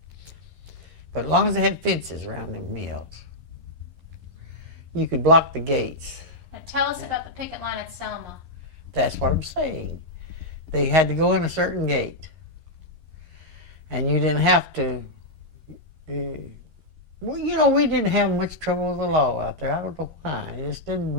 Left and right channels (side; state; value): left; late; 11 ms